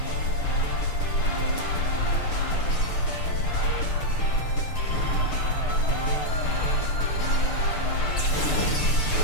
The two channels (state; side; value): late; right; 6.7 ms